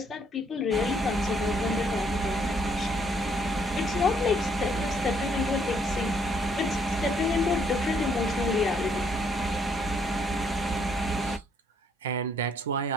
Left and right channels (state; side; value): normal; both; correlation 0.69